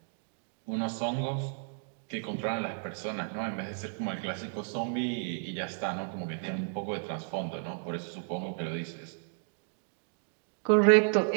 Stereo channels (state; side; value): silent; left; digital silence